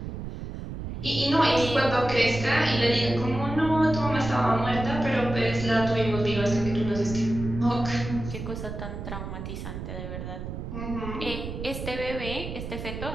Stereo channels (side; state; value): right; noise; rumble, 7 dB below the sound